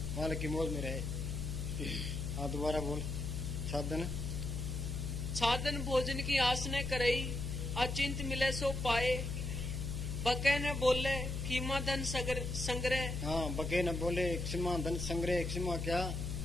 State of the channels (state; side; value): noise; left; hum, 3 dB below the sound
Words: मालिक की मौज में रहे। हाँ, दोबारा बोल। छादन छादन भोजन की आस न करई, अचिंत मिले सो पाए। बके न बोले खीमा धन संग्रह। हाँ, बके न बोले क्षमा धन संग्रह। क्षमा क्या,